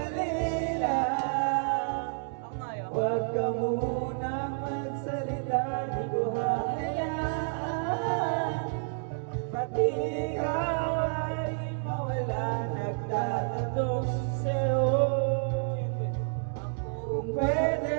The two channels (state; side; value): silent; left; digital silence